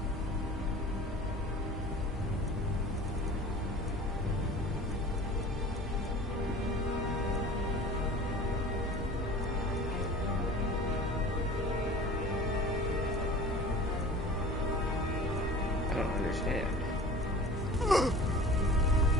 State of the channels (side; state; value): both; normal; correlation 0.40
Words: I don't understand.